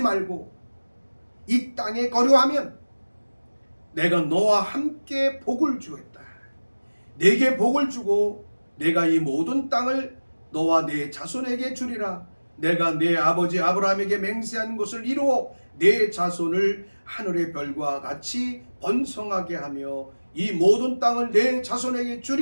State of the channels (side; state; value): both; inverted; correlation -1.00